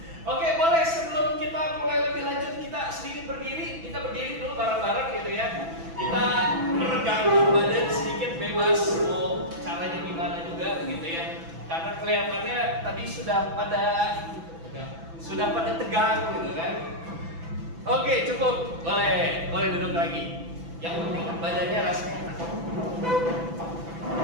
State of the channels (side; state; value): left; late; 6.0 ms